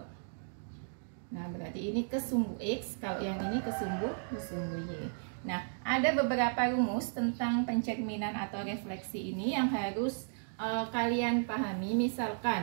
Nah, berarti ini ke sumbu X, kalau yang ini ke sumbu Y. Nah, ada beberapa rumus tentang pencerminan atau refleksi ini yang harus kalian pahami.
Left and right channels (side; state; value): left; silent; digital silence